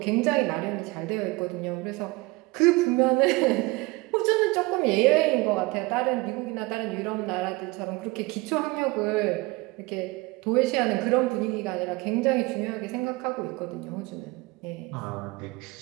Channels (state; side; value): quieter; left; 23.4 dB